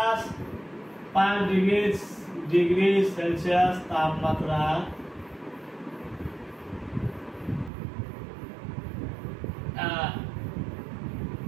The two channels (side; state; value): left; drops out; at 7.7 s